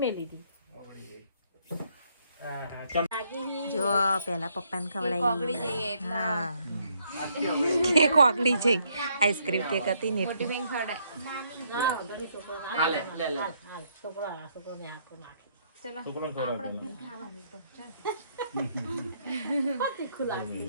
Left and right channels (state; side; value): inverted; both; correlation -0.71